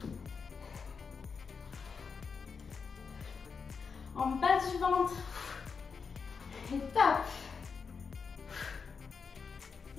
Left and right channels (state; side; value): quieter; right; 5.5 dB